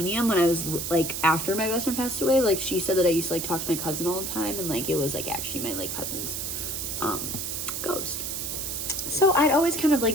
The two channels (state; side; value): noise; right; hiss, 4 dB below the sound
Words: when I was like after my best friend passed away, like she said that I used to like talk to my cousin all the time, and like it was like actually my like cousin's ghost. So I'd always kind of